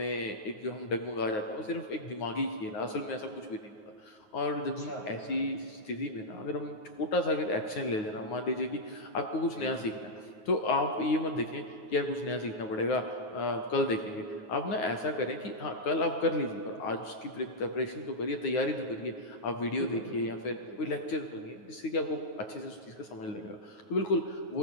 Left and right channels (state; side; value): late; right; 9.4 ms